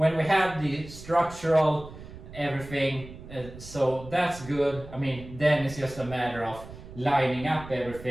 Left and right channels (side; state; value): right; noise; rumble, 15 dB below the sound